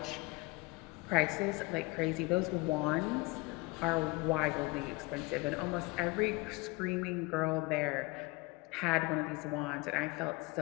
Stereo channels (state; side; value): quieter; right; 24.3 dB